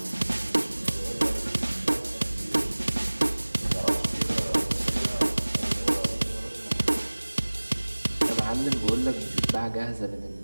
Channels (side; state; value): both; inverted; correlation -1.00